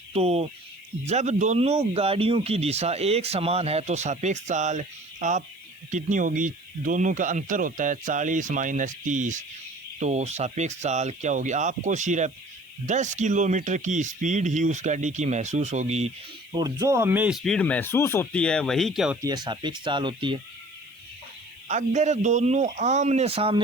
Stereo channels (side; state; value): right; noise; hiss, 30 dB below the sound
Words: तो जब दोनों गाड़ियों की दिशा एक समान है तो सापेक्ष चाल आप कितनी होगी, दोनों का अंतर होता है 40 माइनस 30, तो सापेक्ष चाल क्या होगी, आपको सिर्फ 10 किलोमीटर की स्पीड ही उस गाड़ी की महसूस होगी, और जो हमें स्पीड महसूस होती है वही क्या होती है, सापेक्ष चाल होती है। अगर दोनों आमने